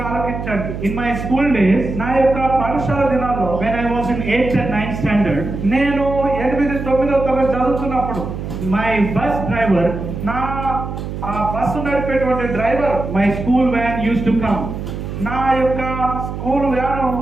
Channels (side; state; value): right; noise; hum, 7 dB below the sound